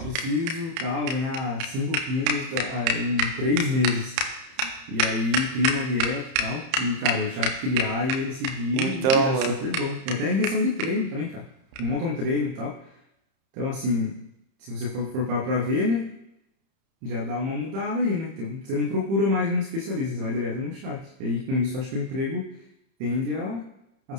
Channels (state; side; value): late; left; 30 ms